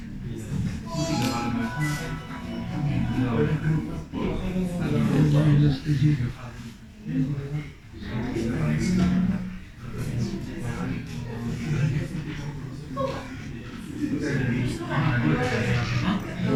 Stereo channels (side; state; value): both; identical; correlation 1.00